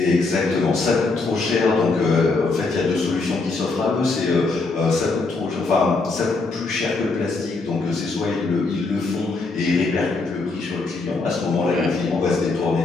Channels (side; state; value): right; quieter; 3.7 dB